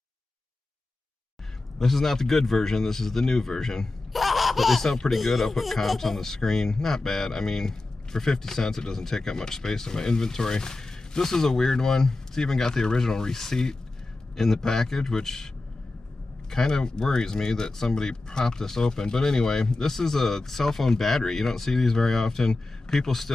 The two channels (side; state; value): right; quieter; 3.0 dB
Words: This is not the good version, this is the new version. But they sound pretty good. I'll put comps on the screen. Not bad. I mean, for 50 cents, it doesn't take up much space in my inventory. This is a weird one. It's even got the original receipt in the package, which kind of worries me that somebody propped this open. But anyway, this is a cell phone battery. You don't see these very often. People